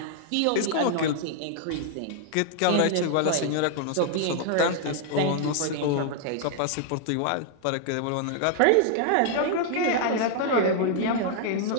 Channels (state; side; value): different; both; correlation 0.00